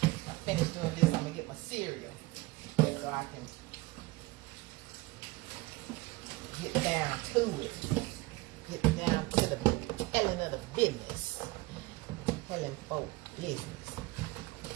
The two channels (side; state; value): left; quieter; 21.6 dB